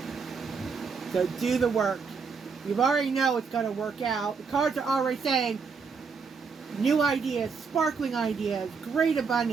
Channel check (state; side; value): quieter; left; 5.3 dB